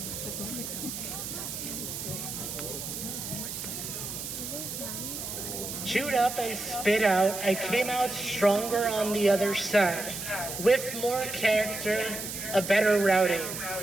Chewed up and spit out, I came out stronger on the other side, with more character, a better Raudy.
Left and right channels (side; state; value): right; noise; hiss, 6 dB below the sound